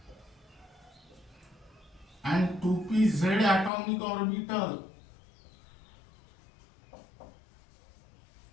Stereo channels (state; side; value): drops out; right; at 3.7 s